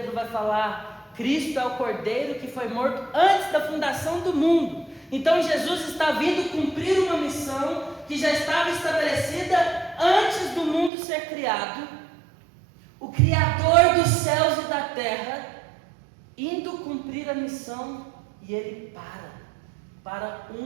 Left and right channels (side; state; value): left; drops out; at 10.9 s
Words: vai falar, Cristo é o Cordeiro que foi morto antes da fundação do mundo. Então Jesus está vindo cumprir uma missão que já estava estabelecida antes do mundo ser criado. O Criador dos céus e da terra indo cumprir a missão, e Ele para